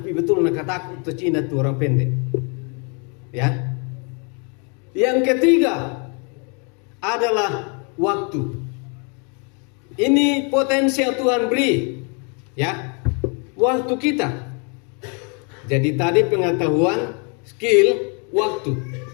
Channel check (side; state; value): right; quieter; 36.5 dB